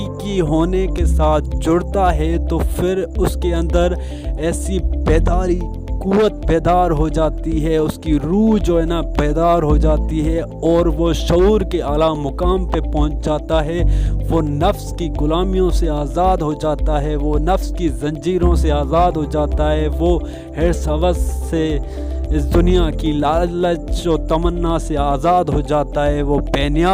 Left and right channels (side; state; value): both; identical; correlation 1.00